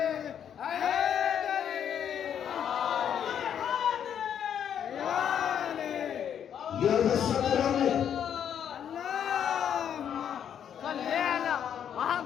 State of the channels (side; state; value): right; quieter; 8.9 dB